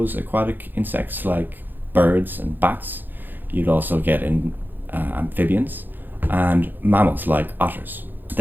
aquatic insects like birds and bats. You'd also get in amphibians and mammals like otters.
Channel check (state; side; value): late; left; 0.090 ms